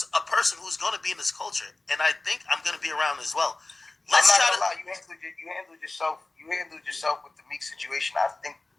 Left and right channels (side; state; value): right; quieter; 3.1 dB